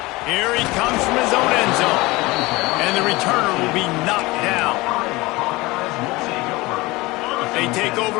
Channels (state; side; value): quieter; right; 21.7 dB